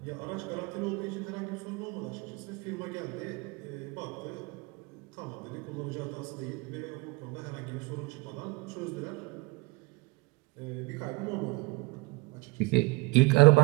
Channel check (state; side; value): quieter; left; 25.5 dB